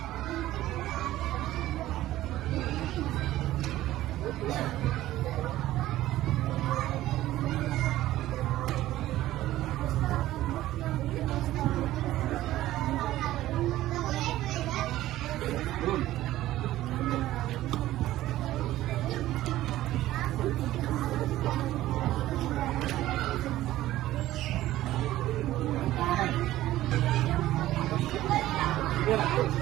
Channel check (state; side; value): quieter; left; 15.0 dB